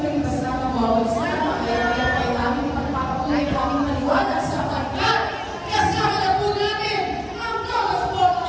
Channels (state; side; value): identical; both; correlation 1.00